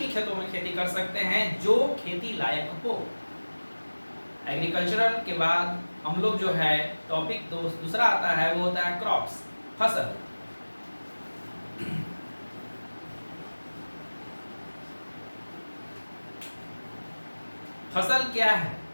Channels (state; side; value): inverted; both; correlation -1.00